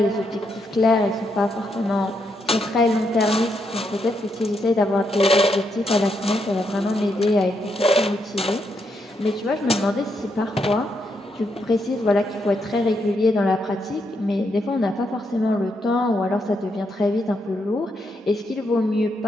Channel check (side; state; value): both; normal; correlation 0.79